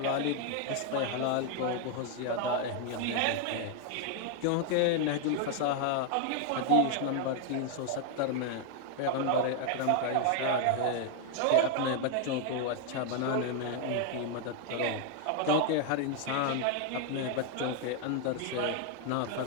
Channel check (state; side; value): different; both; correlation 0.00